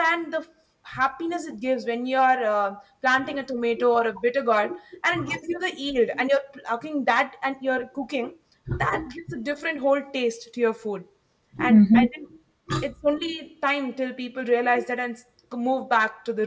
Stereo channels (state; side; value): identical; both; correlation 1.00